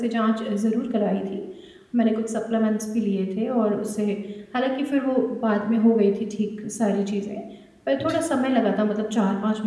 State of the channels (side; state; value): both; identical; correlation 1.00